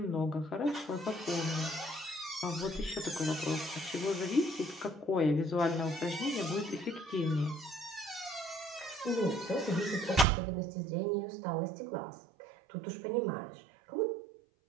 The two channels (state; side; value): drops out; left; at 10.2 s